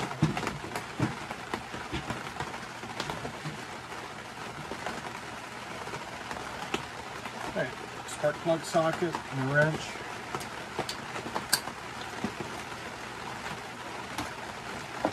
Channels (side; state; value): both; identical; correlation 1.00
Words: Okay, spark plug socket and wrench.